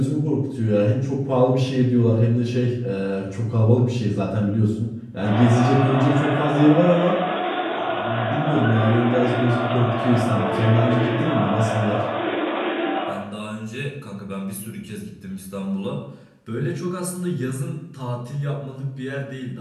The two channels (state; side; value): identical; both; correlation 1.00